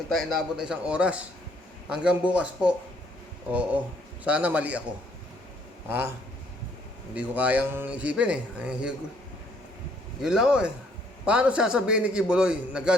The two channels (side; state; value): both; normal; correlation 0.66